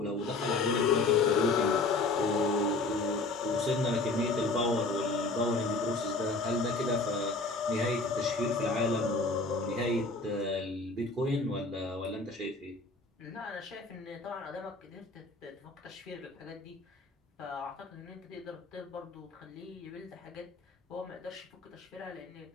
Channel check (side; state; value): right; quieter; 3.4 dB